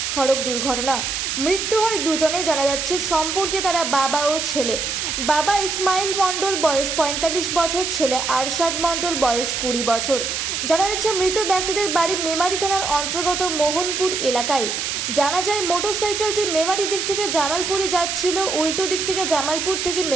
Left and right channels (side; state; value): right; noise; hiss, 2 dB below the sound